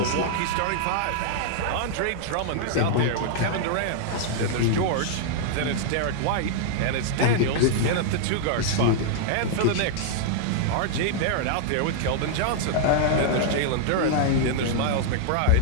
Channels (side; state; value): both; different; correlation -0.01